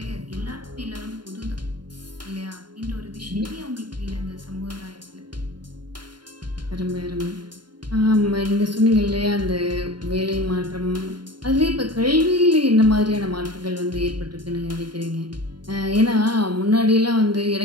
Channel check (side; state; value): left; late; 0.71 ms